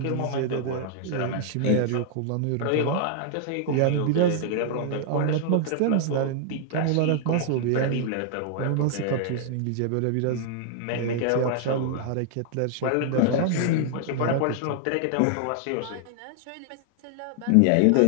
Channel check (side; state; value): both; different; correlation 0.00